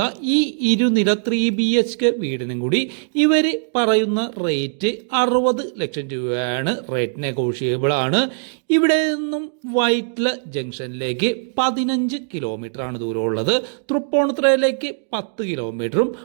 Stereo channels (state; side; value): silent; left; digital silence